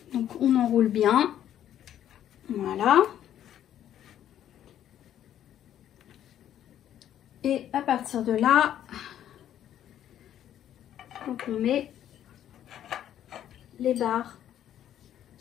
Donc on enroule bien. Voilà. Et à partir de là, donc on met les barres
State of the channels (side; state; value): right; quieter; 10.9 dB